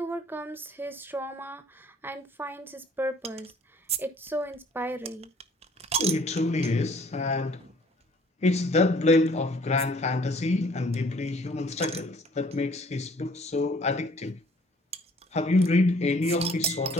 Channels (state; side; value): normal; both; correlation 0.57